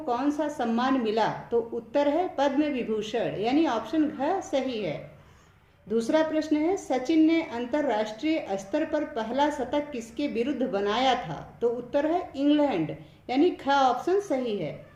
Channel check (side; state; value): both; identical; correlation 1.00